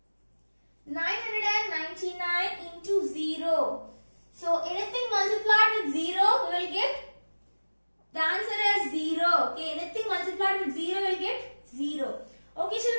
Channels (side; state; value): both; inverted; correlation -1.00